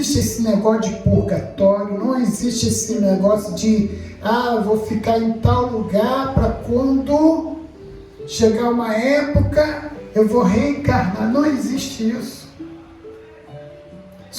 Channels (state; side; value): identical; both; correlation 1.00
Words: esse negócio de purgatório. Não existe esse negócio de vou ficar em tal lugar para quando chegar uma época eu vou reencarnar. Não existe isso.